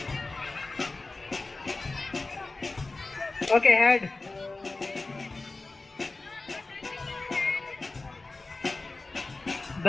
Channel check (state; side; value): quieter; right; 3.4 dB